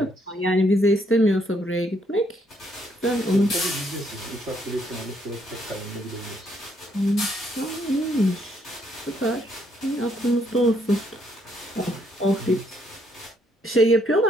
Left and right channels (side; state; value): both; normal; correlation 0.71